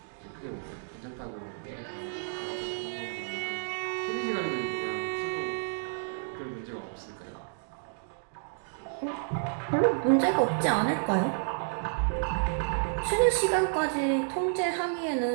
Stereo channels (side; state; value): left; silent; digital silence